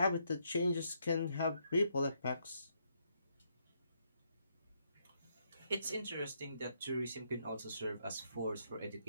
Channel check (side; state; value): both; inverted; correlation -0.75